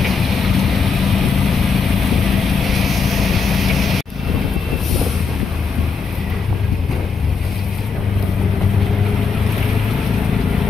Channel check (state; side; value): quieter; right; 5.1 dB